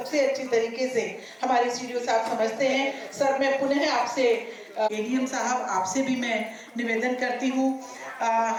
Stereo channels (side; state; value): both; identical; correlation 1.00